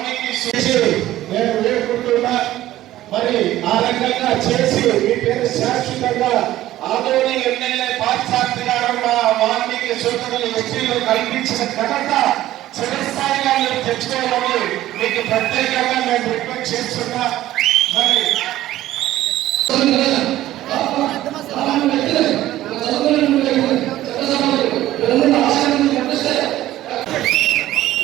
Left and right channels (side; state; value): left; quieter; 14.5 dB